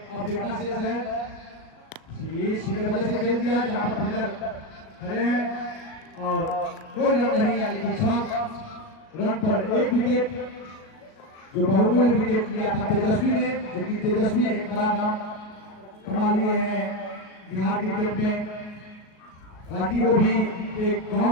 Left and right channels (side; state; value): right; late; 38 ms